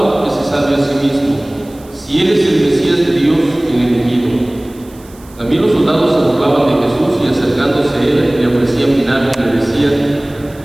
que se salve a sí mismo, si él es el Mesías de Dios, el elegido. También los soldados se burlaban de Jesús y acercándose a él le ofrecían vinagre y le decían:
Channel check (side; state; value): right; noise; hiss, 26 dB below the sound